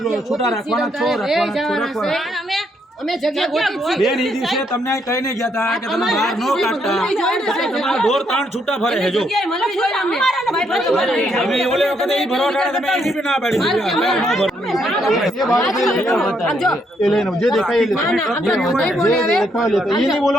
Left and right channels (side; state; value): both; normal; correlation 0.74